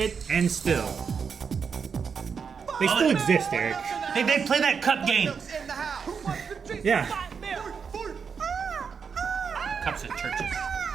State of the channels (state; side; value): quieter; left; 6.1 dB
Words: And still. They still exist, Eric. They play that cup game. In the house. Who wants to drink Yeah. fight milk? Cups at churches.